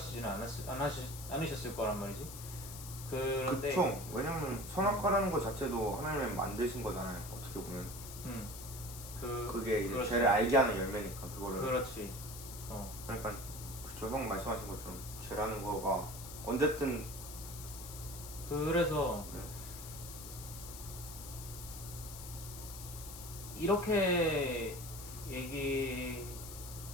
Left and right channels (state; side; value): noise; left; hiss, 11 dB below the sound